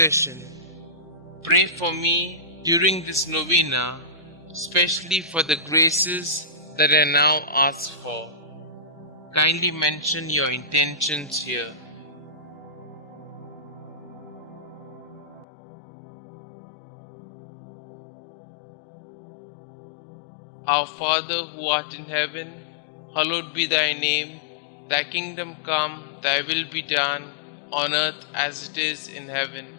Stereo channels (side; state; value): right; drops out; at 15.5 s